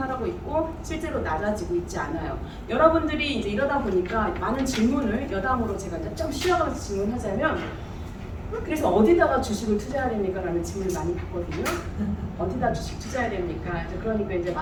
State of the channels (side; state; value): both; identical; correlation 1.00